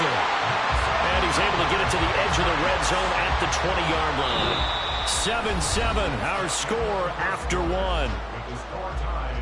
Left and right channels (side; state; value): both; identical; correlation 1.00